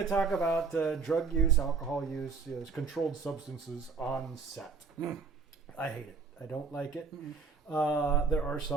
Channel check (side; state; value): left; quieter; 5.0 dB